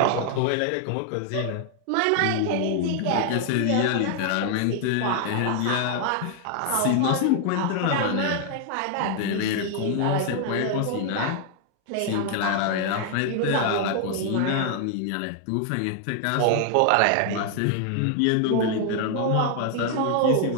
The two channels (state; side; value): different; both; correlation 0.00